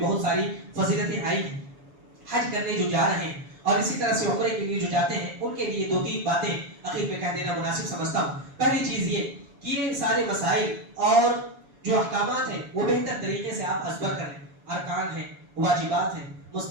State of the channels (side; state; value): left; late; 7.1 ms